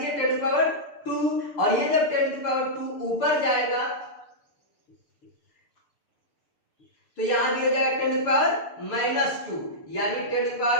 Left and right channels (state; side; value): late; right; 6.8 ms